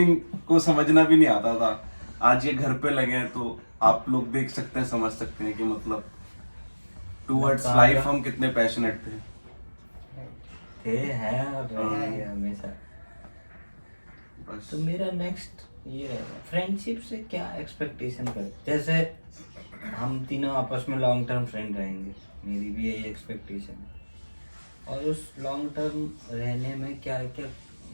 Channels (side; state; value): both; inverted; correlation -1.00